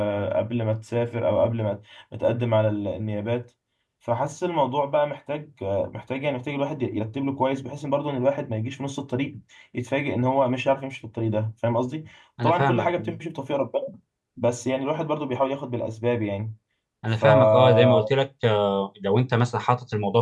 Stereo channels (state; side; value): identical; both; correlation 1.00